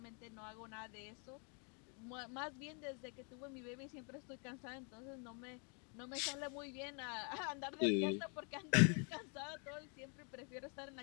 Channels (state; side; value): quieter; right; 37.9 dB